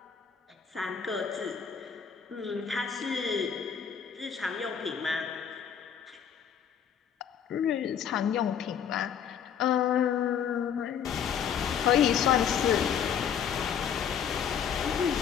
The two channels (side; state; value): right; quieter; 8.0 dB